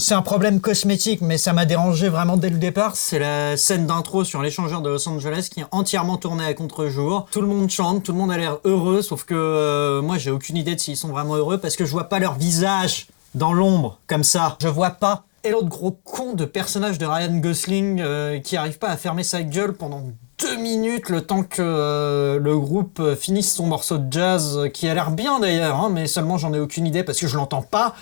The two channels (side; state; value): right; silent; digital silence